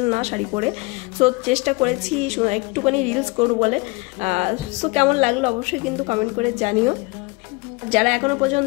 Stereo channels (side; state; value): right; quieter; 26.0 dB